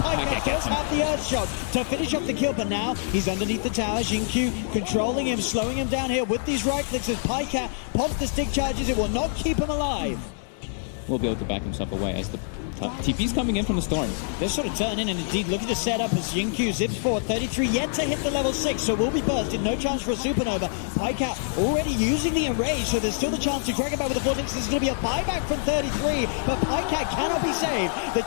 Does have the Earth Shot to finish off the kill, but now he's underneath the tower. XinQ controlling him, slowing him down here with these right clicks as Pajkatt pops the stick charges. It will not keep him alive. Will be able to back himself away as the TP's coming in from the Storm. They're sort of turning and indeed looking to set up as XinQ zips forward. 33 yet to hit the level 6, so will be bursted. No chance for a supernova. Pajkatt already using the enrage, so there's still the chance to drag it back with the vortex. There's going to be a buyback from 33, but Pajkatt cannot be saved. The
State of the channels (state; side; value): silent; right; digital silence